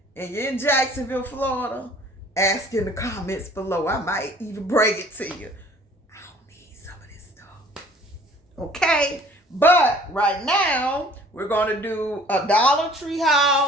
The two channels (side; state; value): both; normal; correlation 0.53